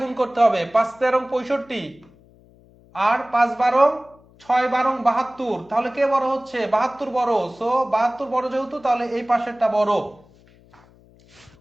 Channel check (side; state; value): left; noise; hum, 28 dB below the sound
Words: গুণ করতে হবে, 5 13 65 আর 5 12 6 12 72। তাহলে কে বড় হচ্ছে? 72 বড়। সো 72 বড় যেহেতু, তাহলে এই পাশেরটা বড়।